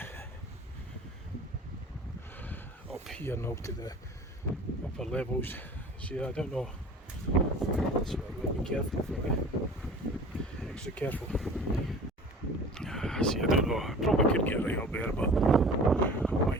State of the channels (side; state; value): both; normal; correlation 0.43